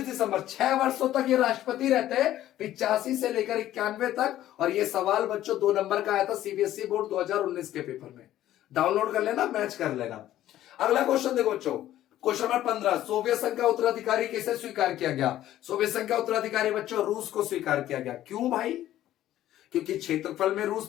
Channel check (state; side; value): quieter; right; 13.2 dB